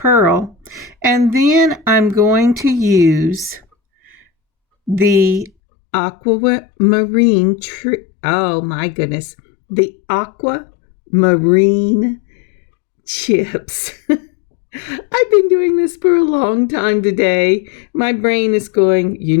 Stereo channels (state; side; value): drops out; right; at 5.5 s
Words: And then I'm going to use the aquamarine the aquamarine chips. I've been doing this for a long time today. My brain is going, you